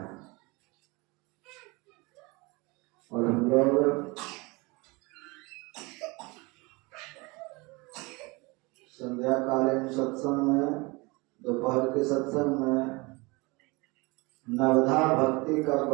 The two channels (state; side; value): quieter; left; 25.7 dB